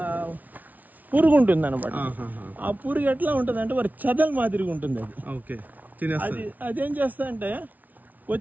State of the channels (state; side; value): late; left; 0.077 ms